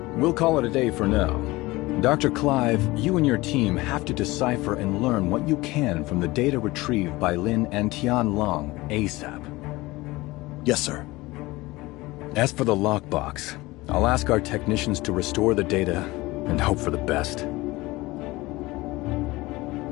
We'll call it a day for now. Dr. Clive, you and your team have to decipher and learn what you can from the data retrieved by Lin and Tian Long ASAP. Yes, sir. As for the lockbox, I'll ask our technicians to restore the data and hope for the best.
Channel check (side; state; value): right; quieter; 20.5 dB